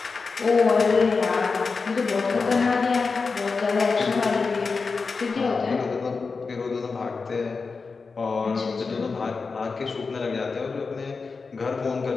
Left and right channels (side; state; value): right; quieter; 4.6 dB